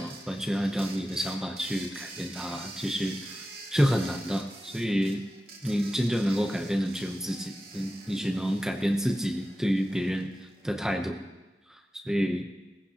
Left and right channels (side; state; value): both; normal; correlation 0.93